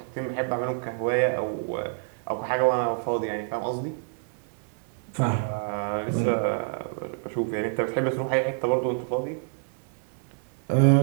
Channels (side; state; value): left; silent; digital silence